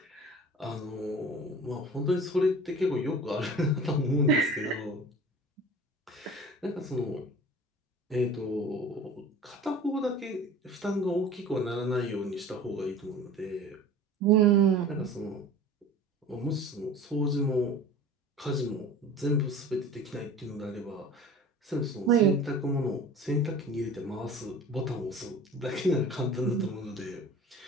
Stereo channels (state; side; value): normal; both; correlation 0.40